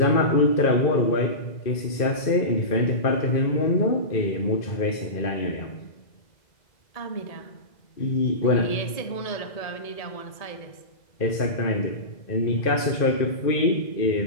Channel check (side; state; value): right; late; 2.0 ms